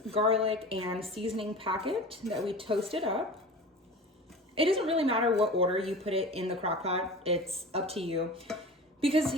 garlic, and seasoning packet that we toasted up. It doesn't really matter what order you put it in the crock pot, it's up to you, because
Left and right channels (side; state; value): both; normal; correlation 0.35